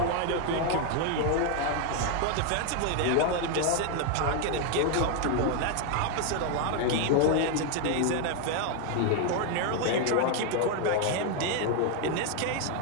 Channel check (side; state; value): both; different; correlation 0.01